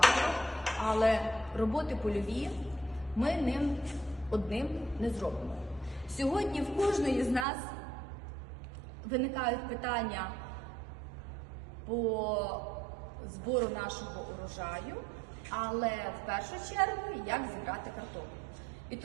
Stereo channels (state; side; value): drops out; left; at 7.5 s